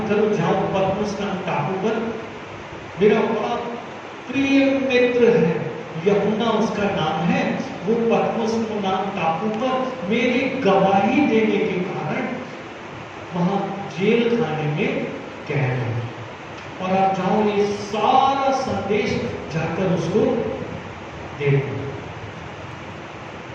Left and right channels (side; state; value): both; identical; correlation 1.00